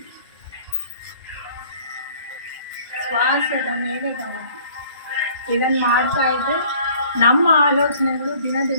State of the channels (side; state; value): both; inverted; correlation -0.53